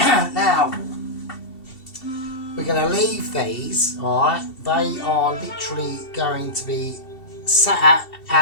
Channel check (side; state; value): right; late; 2.7 ms